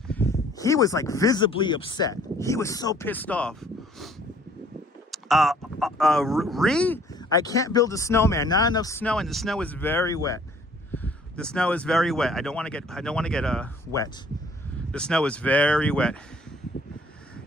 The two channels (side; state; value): both; normal; correlation 0.57